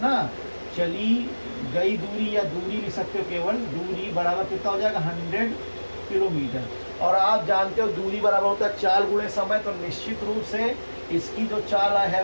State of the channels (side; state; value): both; inverted; correlation -1.00